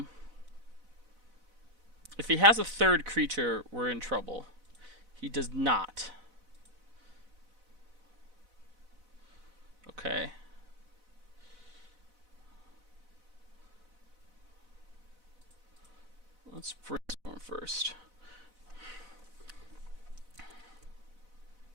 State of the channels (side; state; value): left; late; 4.0 ms